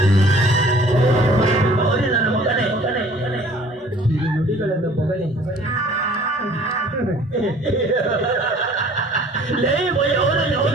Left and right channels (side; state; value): both; normal; correlation 0.52